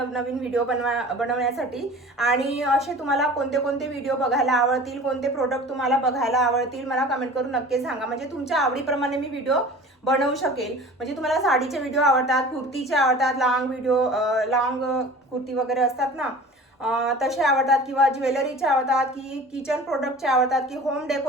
व्हिडिओ बनवण्यासाठी. आणि असे तुम्हाला कोणते कोणते व्हिडिओ बघायला आवडतील, कोणते प्रोडक्ट तुम्हाला बघायला आवडतील मला कमेंट करून नक्की सांगा. म्हणजे तुमच्या आवडीप्रमाणे मी व्हिडिओ बनवू शकेल. म्हणजे तुम्हाला साडीचे व्हिडिओ आवडतात, कुर्तीचे आवडतात, लॉंग कुर्ती वगैरे असतात ना तसे आवडतात किंवा ज्वेलरीचे आवडतात की किचन प्रोडक्टचे आवडतात की होम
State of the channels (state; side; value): normal; both; correlation 0.41